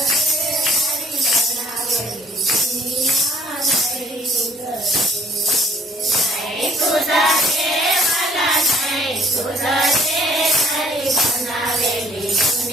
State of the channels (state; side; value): normal; both; correlation 0.58